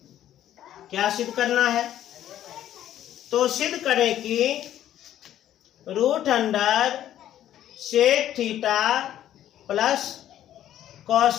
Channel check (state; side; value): quieter; right; 11.8 dB